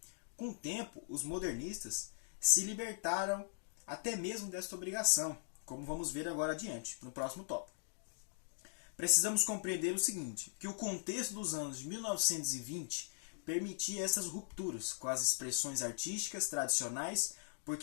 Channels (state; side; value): silent; right; digital silence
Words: Com o tempo, os modernistas se libertaram até mesmo desta obrigação, como vamos ver agora adiante, no próximo tópico. Precisamos compreender o seguinte, que o contexto dos anos de 1920 permitia essas rupturas com as expressões artísticas tradicionais,